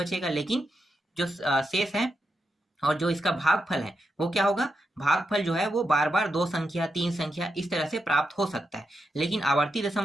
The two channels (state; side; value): normal; both; correlation 0.86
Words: लेकिन जो शेष है और जो इसका भागफल है वो क्या होगा, भागफल जो है वो बार बार 2 संख्या 3 संख्या इस तरह से प्राप्त हो सकता है। लेकिन आवर्ती